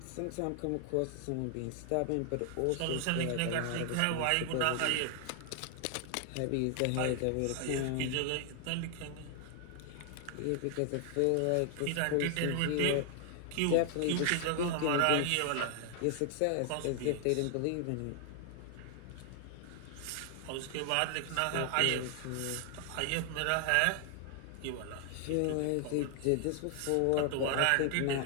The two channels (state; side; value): different; both; correlation 0.00